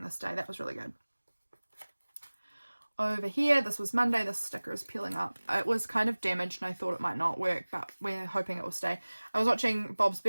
this day. That was really good. Over here, this was Monday. This sticker is peeling up. It was kind of damaged and I thought it might not work, but we're hoping it will stay. I was watching Bob's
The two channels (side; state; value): both; inverted; correlation -1.00